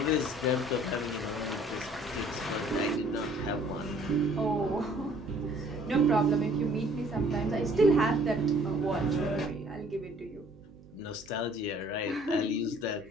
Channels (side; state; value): right; noise; hum, 24 dB below the sound